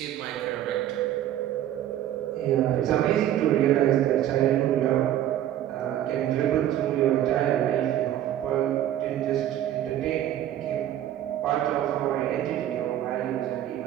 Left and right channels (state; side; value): quieter; left; 12.0 dB